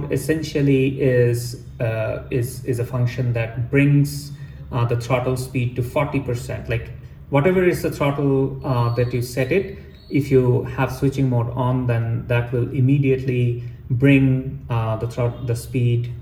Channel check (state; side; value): identical; both; correlation 1.00